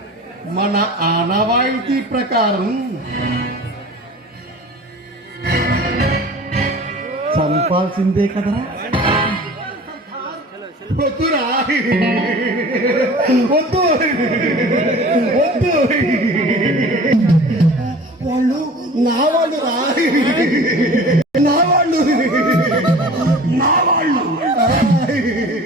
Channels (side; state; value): both; normal; correlation 0.42